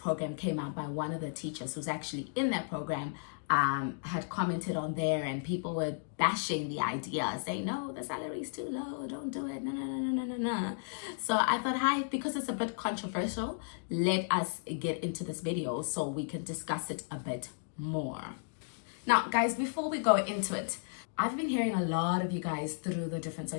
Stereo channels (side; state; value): right; silent; digital silence